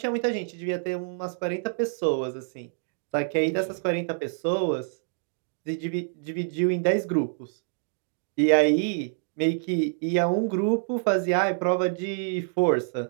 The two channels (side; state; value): left; silent; digital silence